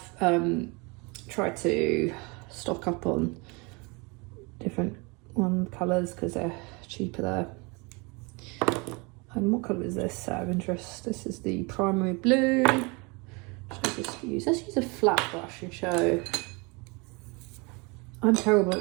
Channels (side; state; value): left; quieter; 28.8 dB